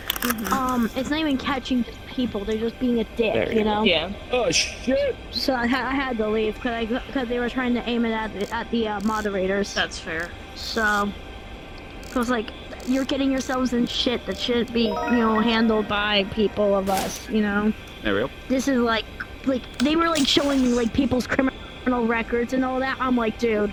It's not even catching just people; they're just being a dick, There you know. Yeah. Oh shit! So I had to leave because they were trying to aim it at the moderators. That's fair. So I was like, you're getting yourselves in shit that shouldn't be, you know, handled by people of us, you know. There we go. Like they were like showing like people's criminal records and all that. I'm like, dude,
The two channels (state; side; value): identical; both; correlation 1.00